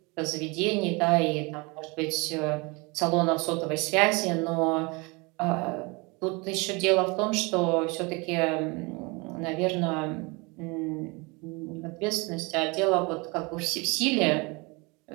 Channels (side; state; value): left; quieter; 27.6 dB